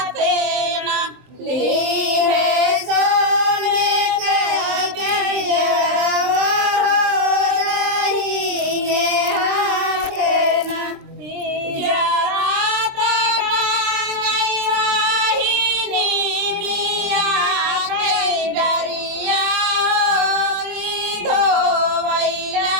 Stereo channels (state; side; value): late; left; 23 ms